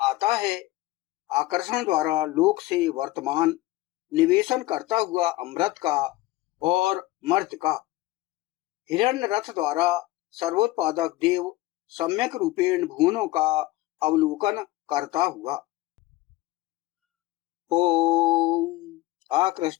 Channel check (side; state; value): right; quieter; 18.0 dB